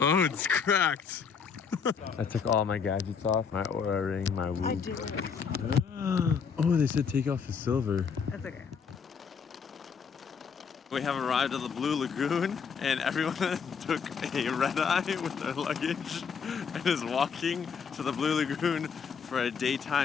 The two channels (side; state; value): right; quieter; 6.3 dB